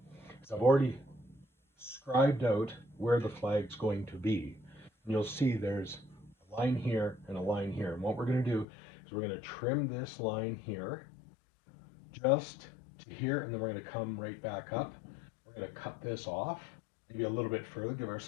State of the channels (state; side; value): drops out; right; at 8.7 s